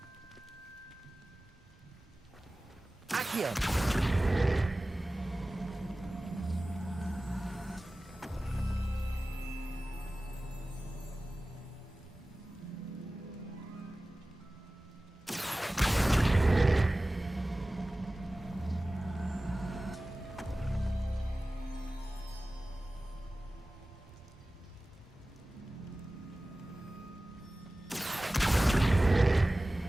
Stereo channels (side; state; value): both; normal; correlation 0.97